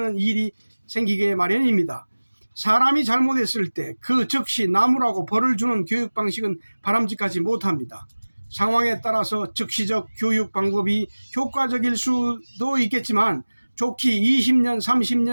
일이 생기게 마련입니다. 사람이 잘못했을 때 그 즉시 나무라고 벌을 주는 교육 방식은 바람직하지 못합니다. 상황에 따라서 즉시적 교육 방법이 효과적일 수도 있겠지만 좋게 20년,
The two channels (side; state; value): both; inverted; correlation -1.00